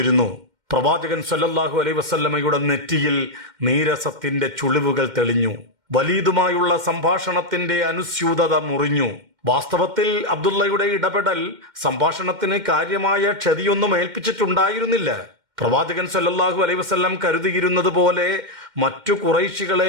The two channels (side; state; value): left; late; 2.1 ms